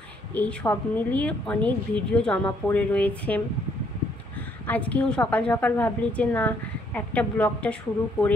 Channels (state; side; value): normal; both; correlation 0.68